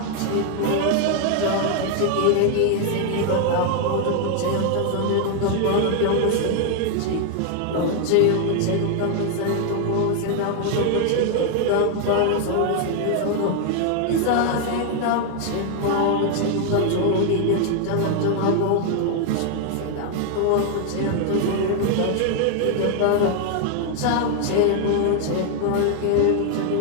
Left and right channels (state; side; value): different; both; correlation 0.00